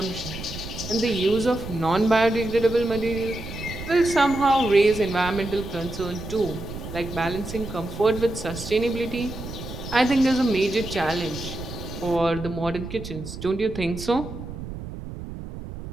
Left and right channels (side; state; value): right; noise; rumble, 10 dB below the sound